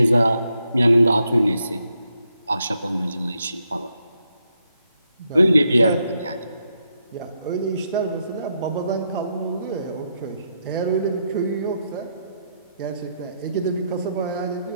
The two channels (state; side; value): inverted; both; correlation -0.80